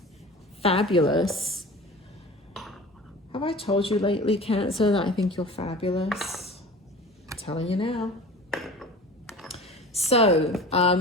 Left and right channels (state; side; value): normal; both; correlation 0.39